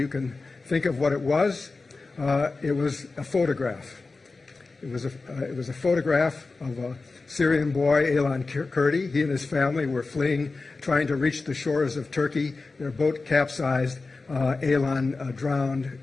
can think of what it was. It was a photograph. It was a photograph of a Syrian boy, Aylan Kurdi. He and his family were fleeing, trying to reach the shores of Turkey. Their boat capsized. Aylan drowned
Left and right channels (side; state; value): right; quieter; 3.8 dB